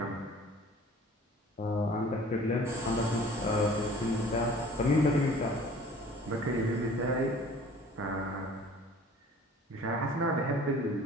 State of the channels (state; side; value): normal; both; correlation 0.48